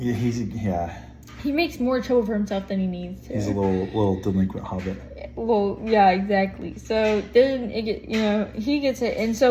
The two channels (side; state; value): both; identical; correlation 1.00